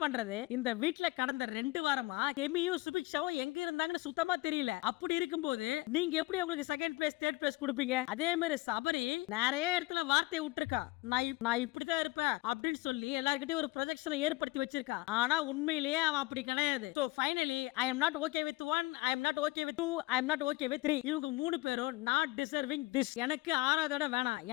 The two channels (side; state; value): right; quieter; 21.6 dB